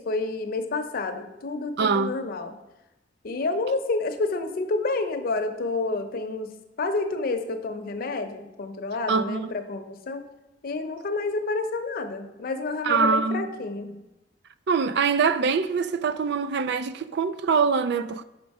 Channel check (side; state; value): both; normal; correlation 0.03